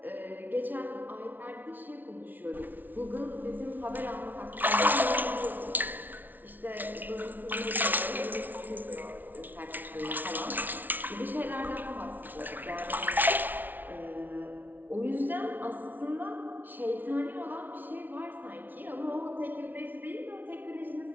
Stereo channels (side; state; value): left; late; 0.085 ms